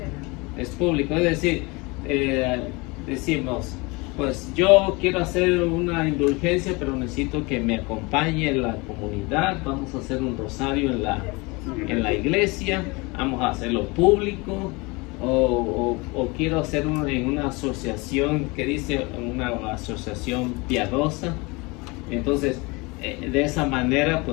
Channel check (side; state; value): right; quieter; 26.2 dB